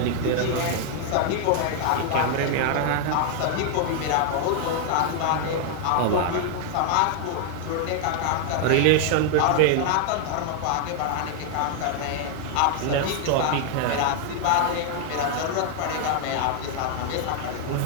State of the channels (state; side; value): different; both; correlation 0.00